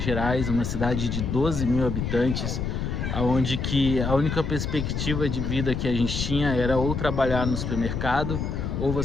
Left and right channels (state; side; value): noise; left; rumble, 2 dB below the sound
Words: Gerais, uma cidade de 12 mil habitantes, onde que a única perspectiva de vida que a gente tinha era ou trabalhar no supermercado, ou